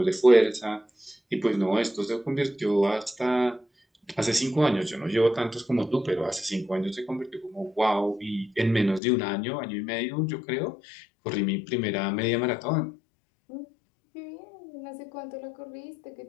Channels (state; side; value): drops out; right; at 9.0 s